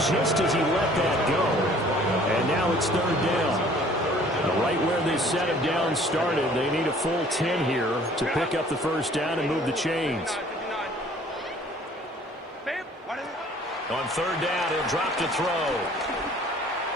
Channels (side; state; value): both; normal; correlation 0.54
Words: just as he let that go. And now it's third down. Right where this set of downs started, they need a full 10 here to pick up the first down and move the chains. On third down, he'll drop to throw.